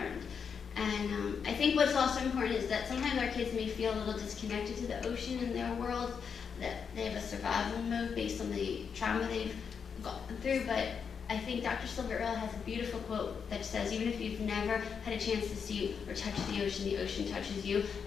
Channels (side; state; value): right; quieter; 6.5 dB